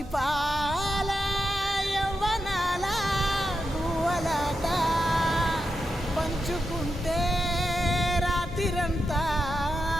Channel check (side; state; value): both; normal; correlation 0.87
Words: పాల యవ్వనాల గువ్వలాట పంచుకుంటే రాత్రిరంతా